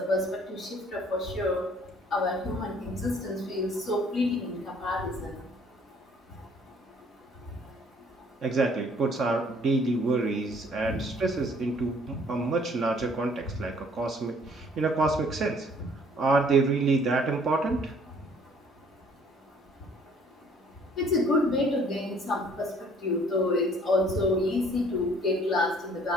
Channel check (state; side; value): normal; both; correlation 0.58